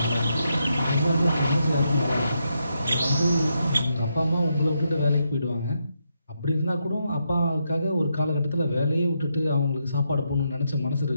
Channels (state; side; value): inverted; both; correlation -0.81